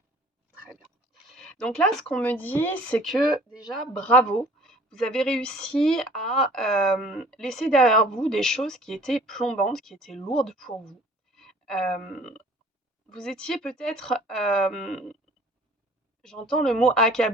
Très bien. Donc là, ce qu'on me dit, c'est que déjà, bravo, vous avez réussi à laisser derrière vous des choses qui étaient plombantes, qui étaient lourdes pour vous. Vous étiez peut-être, j'entends le mot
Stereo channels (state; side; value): normal; both; correlation 0.51